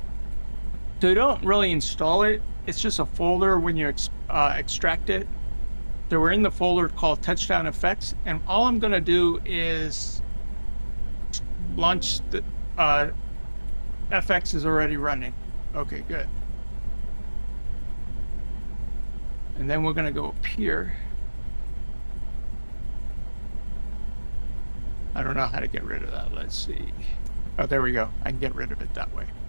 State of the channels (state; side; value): inverted; both; correlation -1.00